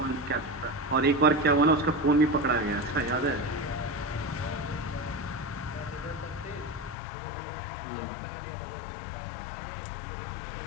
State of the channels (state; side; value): drops out; right; at 7.0 s